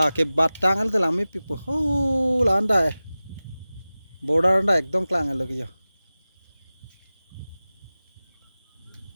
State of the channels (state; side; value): inverted; both; correlation -0.97